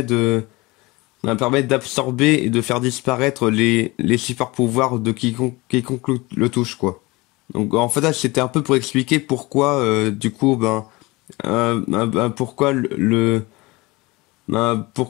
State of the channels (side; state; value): right; quieter; 22.9 dB